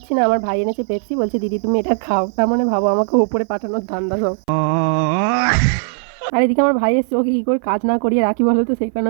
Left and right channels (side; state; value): left; silent; 58 dB below the other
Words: না। আমার ভাই এনেছে পেপসি, বলছে দিদি তুমি এটা খাও। তার মানে ভাবো আমাকে ওপরে পাঠানোর ধান্দা সব। আর এদিকে আমার ভাই এসছে, ওকে কী করে কাজ না করিয়ে রাখি বলো তো। সেই কারণে